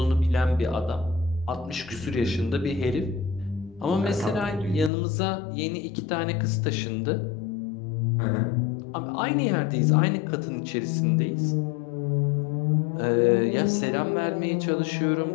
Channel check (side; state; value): right; drops out; at 4.9 s